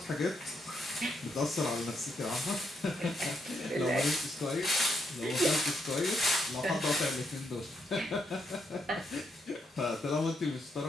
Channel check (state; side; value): normal; both; correlation 0.78